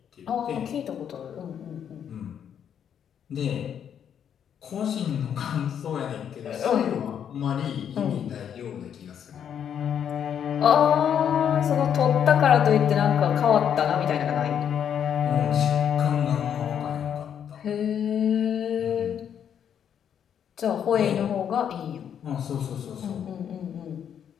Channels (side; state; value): right; quieter; 8.7 dB